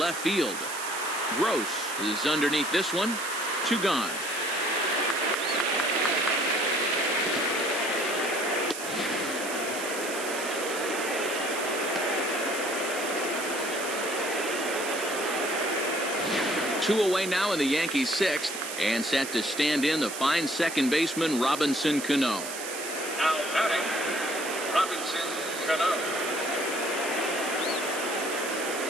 field. Gross is underneath this one. 2 gone. Two away now in the Yankees' 6th, and set to stand in the fine second baseman Robinson Cano. Now batting, Robinson Cano.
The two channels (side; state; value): right; noise; hiss, 8 dB below the sound